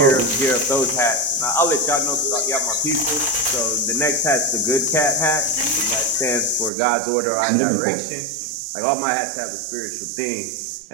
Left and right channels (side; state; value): left; drops out; at 6.7 s